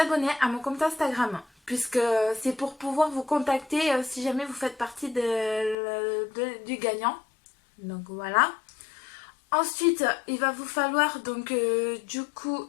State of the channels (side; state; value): right; drops out; at 5.8 s